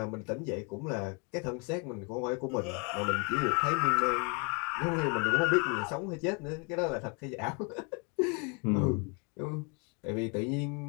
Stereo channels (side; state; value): right; quieter; 34.6 dB